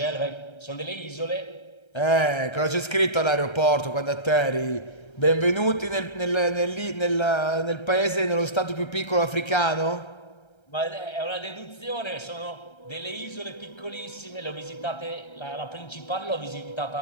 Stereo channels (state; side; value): late; right; 1.3 ms